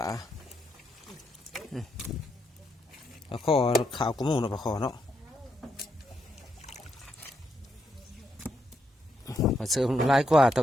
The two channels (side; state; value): both; normal; correlation 0.79